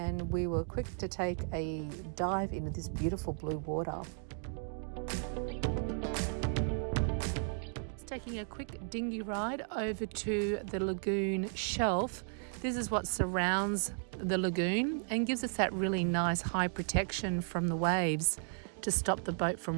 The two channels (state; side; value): silent; left; 55 dB below the other